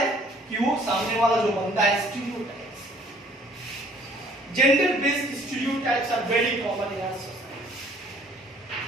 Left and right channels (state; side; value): normal; both; correlation 0.58